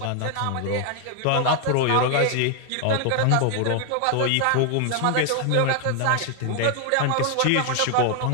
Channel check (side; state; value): both; different; correlation 0.00